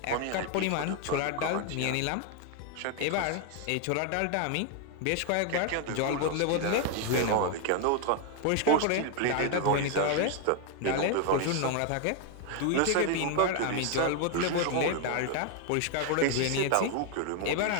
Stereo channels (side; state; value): both; different; correlation 0.01